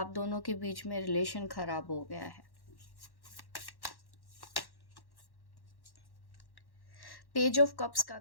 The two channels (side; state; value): right; late; 1.1 ms